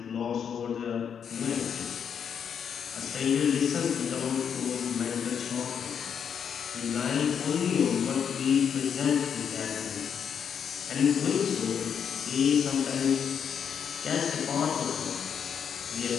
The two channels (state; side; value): quieter; right; 7.6 dB